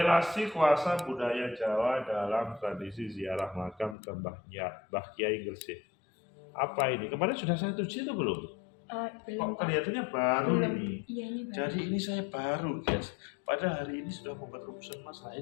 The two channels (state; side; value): drops out; right; at 4.0 s